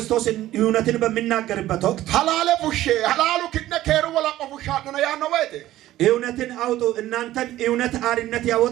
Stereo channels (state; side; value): quieter; left; 14.6 dB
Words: እውነትን በሚናገርበት ወቅት ሐላለ ፉሼ ሐላሉ ክነ ከሩ ወላ ቆፉሻ ነው ያነው ወህተ እውነትን አውጡ እናንተን እውነት አርነት